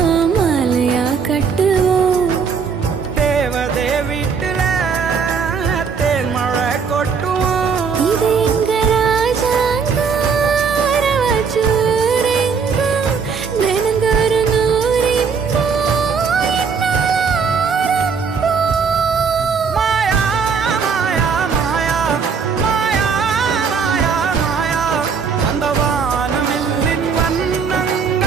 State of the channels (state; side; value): quieter; left; 5.8 dB